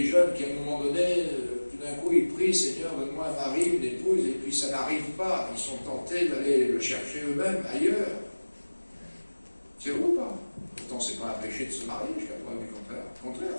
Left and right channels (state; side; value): inverted; both; correlation -1.00